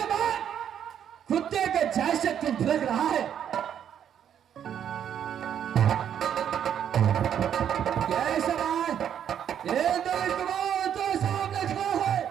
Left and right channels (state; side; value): quieter; left; 9.2 dB